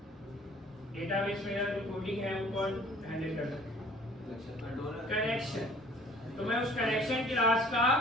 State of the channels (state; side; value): normal; both; correlation 0.53